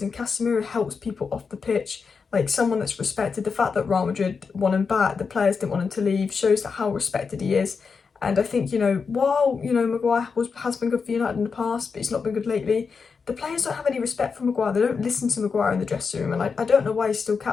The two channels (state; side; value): quieter; right; 5.3 dB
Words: and Casemiro helps people off the pitch, like someone that's respected. The fact that Real Madrid won him back, the players didn't want him to leave, shows that how respected he is. And I think, you know, while, you know, Maguire has been good for United in the past, but he's not been good lately, the players don't have any respect for Maguire. They don't listen to Maguire in the dressing room, and I don't know why he's still